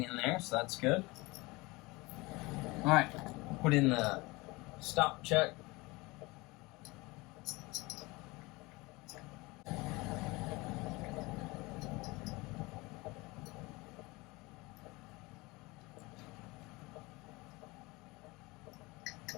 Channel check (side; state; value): right; quieter; 23.3 dB